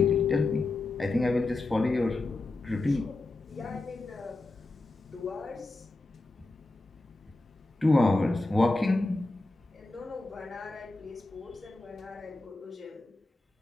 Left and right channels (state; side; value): quieter; right; 3.0 dB